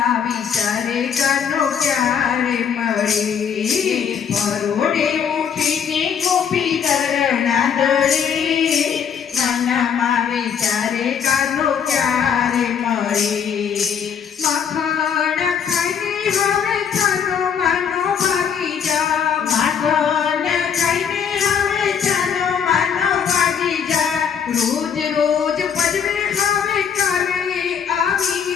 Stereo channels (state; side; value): quieter; right; 7.5 dB